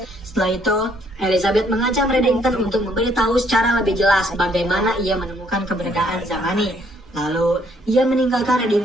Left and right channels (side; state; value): both; normal; correlation 0.67